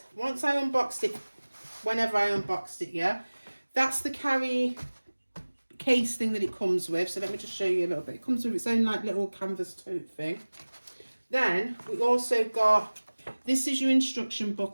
once I unboxed it, whenever I unboxed it, yeah, that's the carry case thing that it comes with. So let me just show you a little bit. It comes with its own like little canvas tote thing. Then we also got, this is your instruction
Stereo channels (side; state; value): both; inverted; correlation -1.00